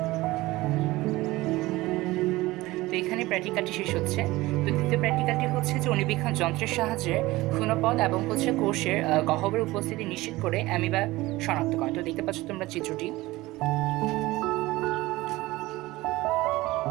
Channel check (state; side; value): quieter; left; 19.2 dB